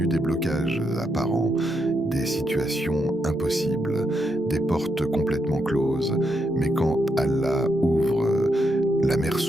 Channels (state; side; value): normal; both; correlation 0.80